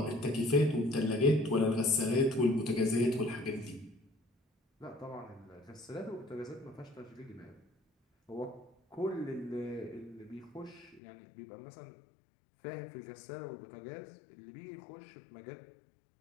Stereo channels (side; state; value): right; drops out; at 11.0 s